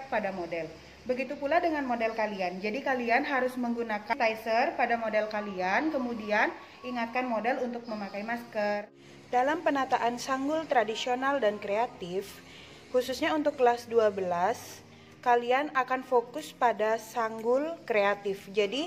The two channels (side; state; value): both; identical; correlation 1.00